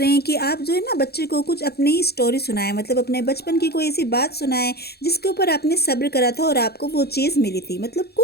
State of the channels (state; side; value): late; right; 0.46 ms